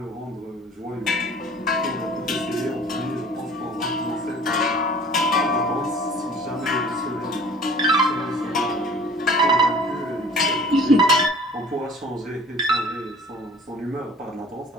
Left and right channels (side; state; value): both; normal; correlation 0.48